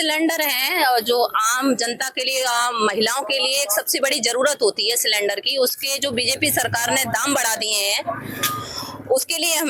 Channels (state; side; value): identical; both; correlation 1.00